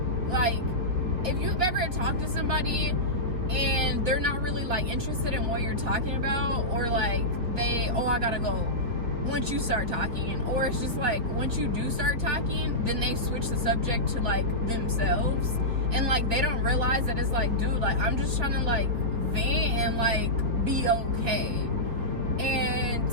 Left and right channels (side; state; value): left; late; 3.9 ms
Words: like, if you've ever talked to somebody and they're not really like interested in what you're talking about, or like they, oh, I gotta go once you start talking, or it's just like once you do start talking, then they switch the subject to like themselves, and like they don't realize that it's like, dude, like I'm just trying to like vent and like be okay. And